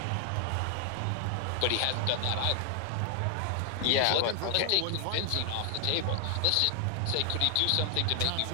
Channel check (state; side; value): different; both; correlation 0.00